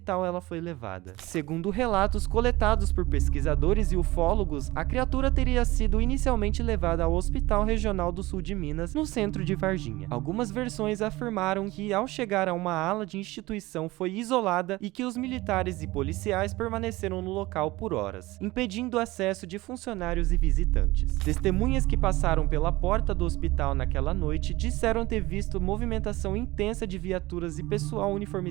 ela foi levada. Segundo relatos coletados por pesquisadores e ufólogos, a criatura teria sido inicialmente levada ao Hospital Regional do Sul de Minas, no centro de Varginha. Algumas versões afirmaram que, ao chegar a uma ala de instituição, foi isolada e que os militares e policiais permaneceram no local por horas, impedindo o acesso de funcionários e visitantes. visitantes. Testemunhas que passaram pela porta do hospital naquela noite disseram ter visto movimentação intensa de viaturas e pessoal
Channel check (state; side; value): quieter; left; 19.7 dB